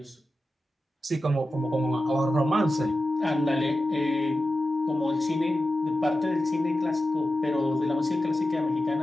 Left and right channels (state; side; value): normal; both; correlation 0.93